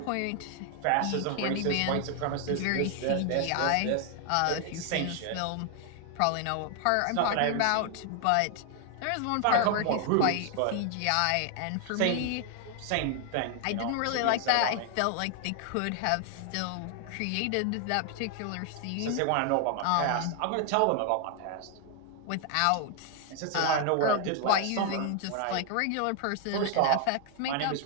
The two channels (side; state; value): both; different; correlation 0.00